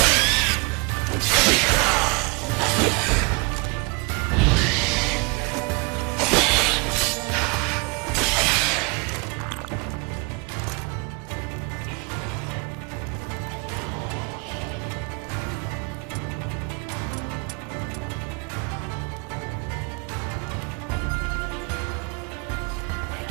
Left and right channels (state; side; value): quieter; left; 31.0 dB